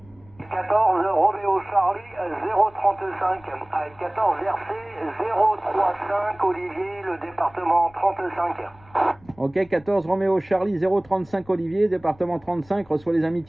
14 Roméo Charlie 035 avec 14 RC 035 Olivier, le département 35. Ok, 14 Roméo Charlie 035 Olivier, département 35, reçoit les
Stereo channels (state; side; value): noise; left; rumble, 27 dB below the sound